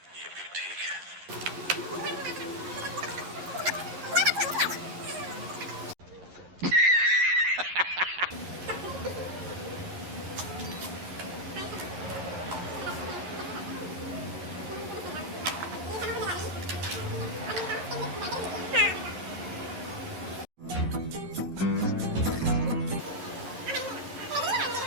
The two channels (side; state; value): left; late; 11 ms